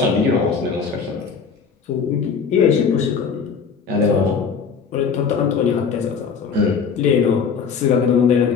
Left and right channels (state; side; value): quieter; right; 6.0 dB